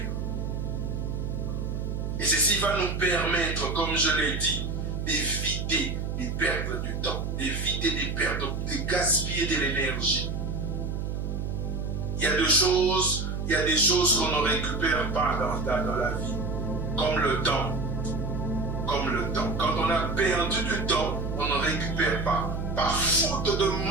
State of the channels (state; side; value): noise; right; hum, 3 dB below the sound